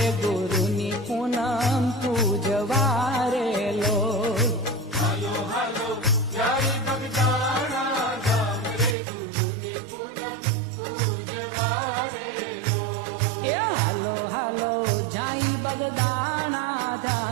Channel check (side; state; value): left; drops out; at 9.0 s